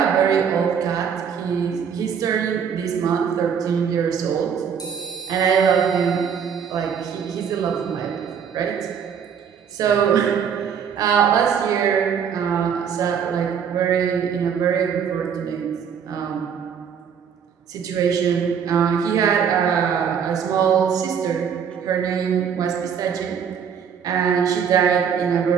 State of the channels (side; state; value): left; quieter; 7.4 dB